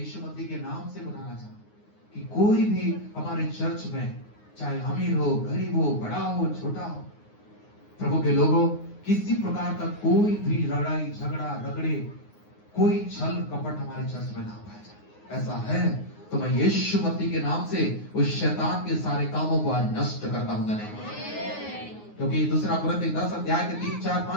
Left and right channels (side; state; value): right; late; 9.6 ms